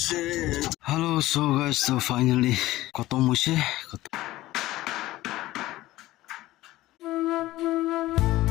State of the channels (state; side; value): quieter; right; 16.8 dB